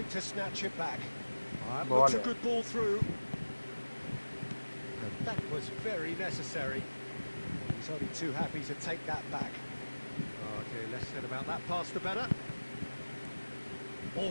to snatch it back. That looks a good ball through. And that was very necessary. He's only too happy to take that back. Okay, less said about that pass, the better.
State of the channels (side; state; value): both; inverted; correlation -1.00